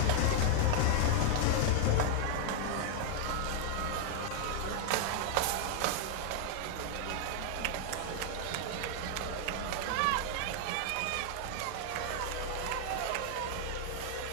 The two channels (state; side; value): different; both; correlation 0.00